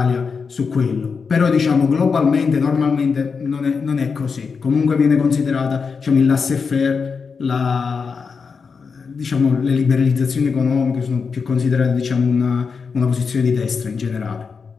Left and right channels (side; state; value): right; quieter; 5.4 dB